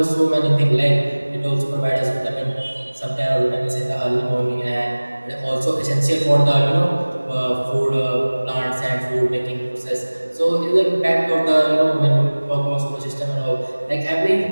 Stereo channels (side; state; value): both; inverted; correlation -1.00